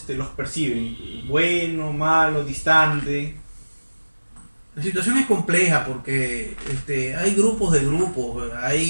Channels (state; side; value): inverted; both; correlation -1.00